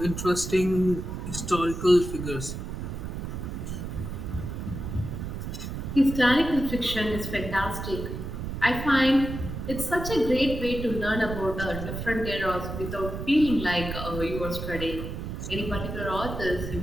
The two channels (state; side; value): noise; right; rumble, 6 dB below the sound